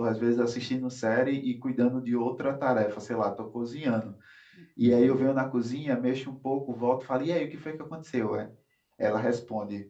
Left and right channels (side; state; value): both; identical; correlation 1.00